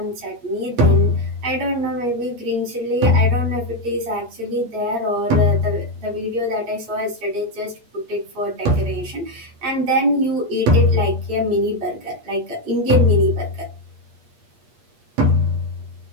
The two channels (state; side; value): late; left; 8.5 ms